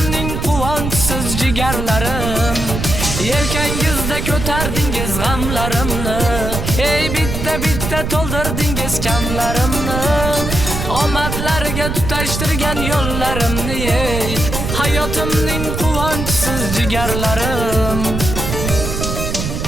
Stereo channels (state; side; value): noise; right; rumble, 4 dB below the sound